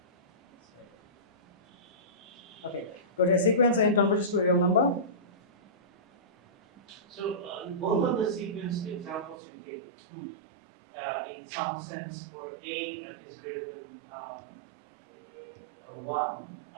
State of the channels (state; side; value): drops out; left; at 9.3 s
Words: Okay. Got a sequence and converges to a real number. So both of the sequence examples you gave, in some sense, for A that is greater than 1,